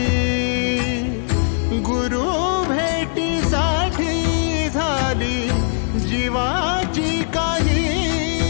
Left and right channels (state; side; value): silent; right; digital silence